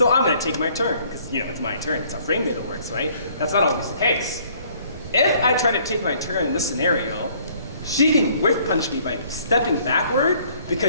I'm gonna take my turn, because it's my turn, it's how frame data works, right? That's not always the case. If I try to take my turn in this scenario, she can whiff punish me by stepping backward,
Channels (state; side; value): inverted; both; correlation -0.60